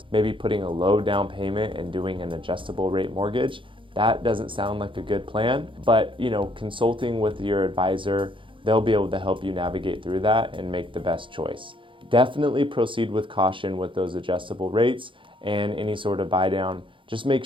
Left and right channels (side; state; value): left; late; 0.25 ms